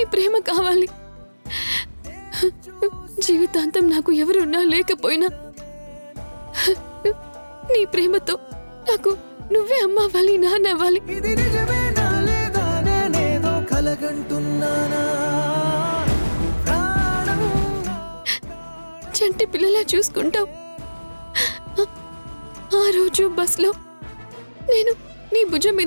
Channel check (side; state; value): both; inverted; correlation -1.00